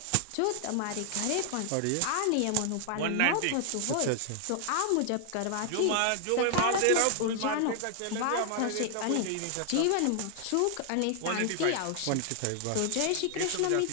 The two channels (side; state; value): both; different; correlation 0.00